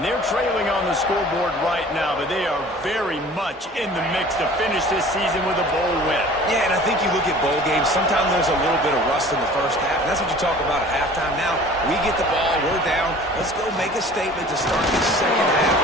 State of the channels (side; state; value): both; normal; correlation 0.46